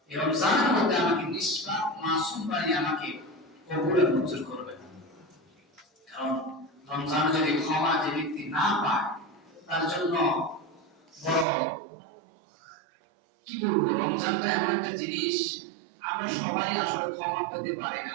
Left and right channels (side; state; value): left; drops out; at 11.5 s